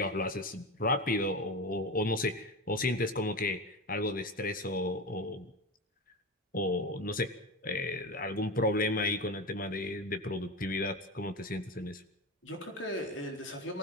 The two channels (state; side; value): normal; both; correlation 0.22